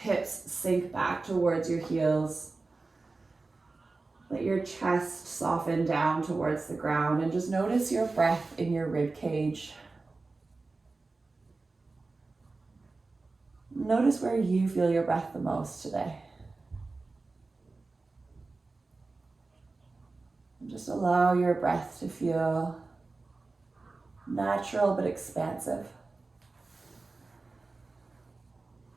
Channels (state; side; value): quieter; left; 3.6 dB